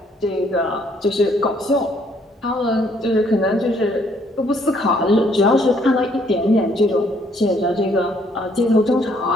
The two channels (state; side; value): normal; both; correlation 0.66